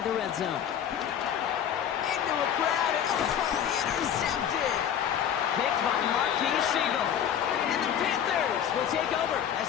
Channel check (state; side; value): quieter; right; 9.2 dB